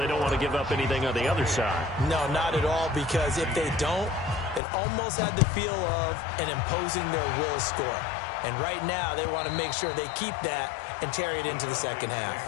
don't want to give up anything on the other side. No, not at all, because if they don't, it almost had the feel of an imposing their will score. And right now, they want to make sure they keep that and carry it into the second half.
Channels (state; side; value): drops out; right; at 4.6 s